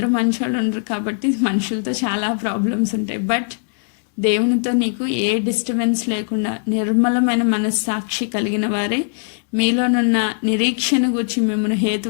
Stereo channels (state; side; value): silent; right; digital silence